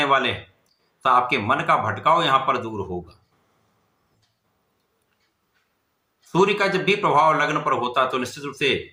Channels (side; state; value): both; identical; correlation 1.00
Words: वाले हैं, तो आपके मन का भटकाव यहां पर दूर होगा। सूर्य का जब भी प्रभाव लग्न पर होता तो निश्चित रूप से